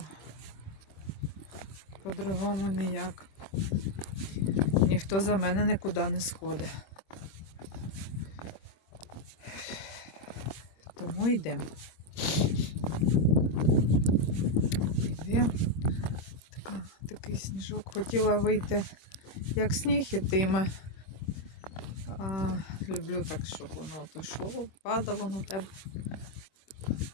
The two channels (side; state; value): right; late; 26 ms